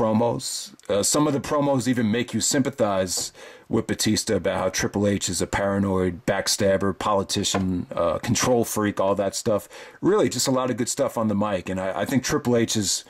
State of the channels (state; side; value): identical; both; correlation 1.00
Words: Some of the promos even make you sympathize with Batista about how Triple H is a paranoid backstabber, politician, control freak, all that stuff. Really, just a lot of good stuff on the mic. And I think Triple H